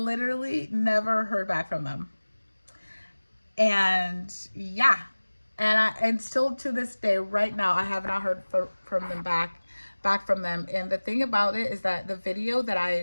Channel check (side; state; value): both; inverted; correlation -1.00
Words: never heard back from them. And yeah, and still to this day, right now, I have not heard from them back from them. And the thing about it is that the video that